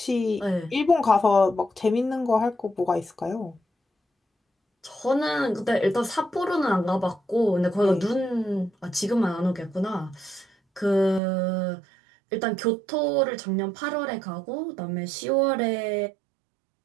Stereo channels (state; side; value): drops out; left; at 11.2 s